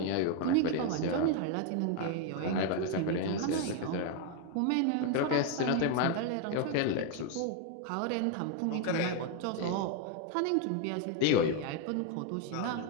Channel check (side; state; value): both; different; correlation 0.01